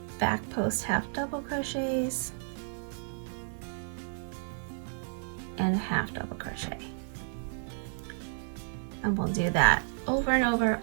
back post half double crochets and a half double crochet. And we'll do that over and over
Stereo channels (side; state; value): left; silent; 57 dB below the other